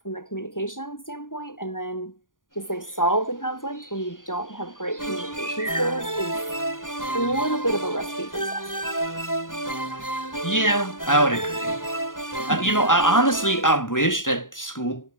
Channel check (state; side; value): late; right; 0.89 ms